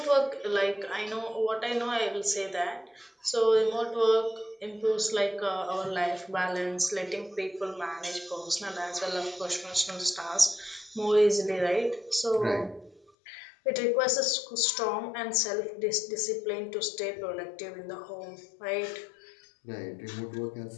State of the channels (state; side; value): drops out; right; at 13.1 s